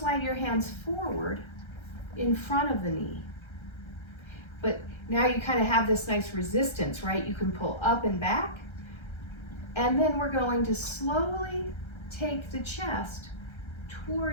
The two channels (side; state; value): right; late; 1.3 ms